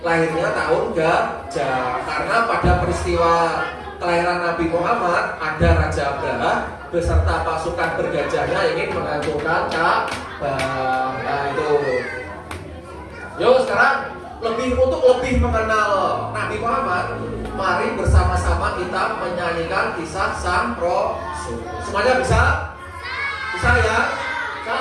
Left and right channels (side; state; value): both; identical; correlation 1.00